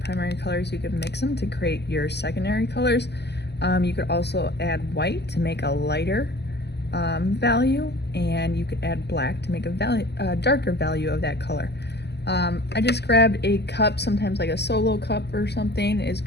colors, you can mix them to create your secondary colors. You could also add white to make a lighter value, and you could add black to make a darker value of that color. I just grabbed a cup, sometimes like a solo cup or something is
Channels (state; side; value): late; right; 0.49 ms